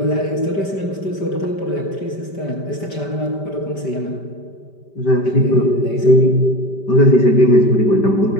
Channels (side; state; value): right; late; 5.1 ms